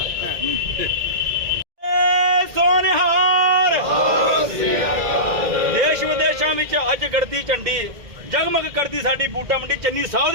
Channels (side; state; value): left; late; 2.1 ms